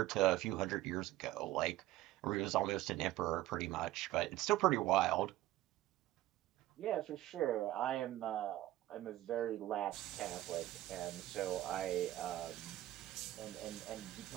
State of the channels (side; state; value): left; quieter; 15.5 dB